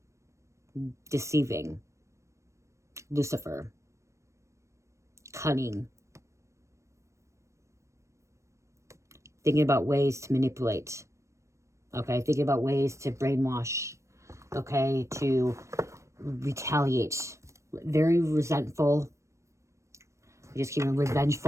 deceiving, Lucifer, cunning, thinking about ways to manipulate, okay, thinking about ways to brainwash, okay, to retaliate, very resentful, just keeping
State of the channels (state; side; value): late; left; 0.15 ms